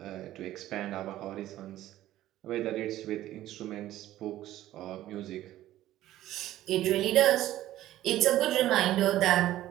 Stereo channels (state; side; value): quieter; left; 14.1 dB